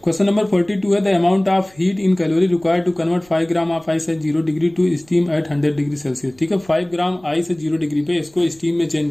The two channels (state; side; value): noise; right; rumble, 29 dB below the sound